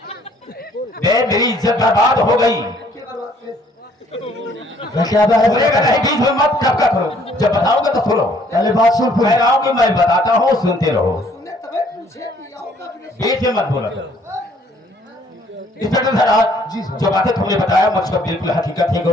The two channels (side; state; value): both; normal; correlation 0.62